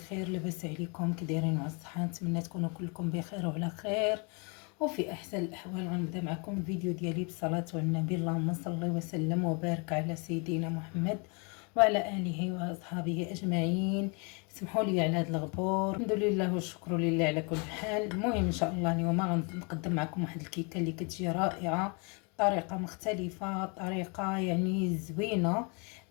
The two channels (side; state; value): right; quieter; 33.4 dB